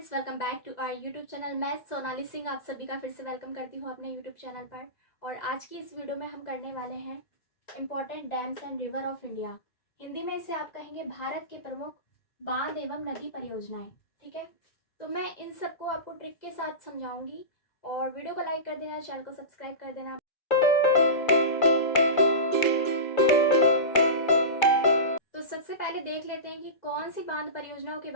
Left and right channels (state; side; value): late; right; 2.0 ms